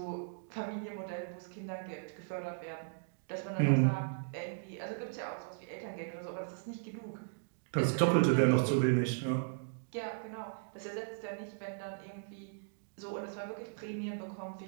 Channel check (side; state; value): left; silent; digital silence